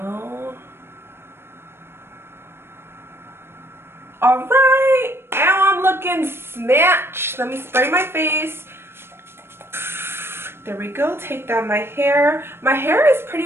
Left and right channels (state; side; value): late; left; 0.12 ms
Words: Alright, now I'm looking snatched. Let me spray my face. There we go. Take down my hair. My hair is pretty